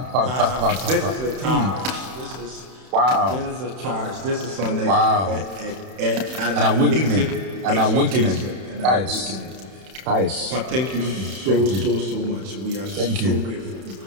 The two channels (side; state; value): left; late; 31 ms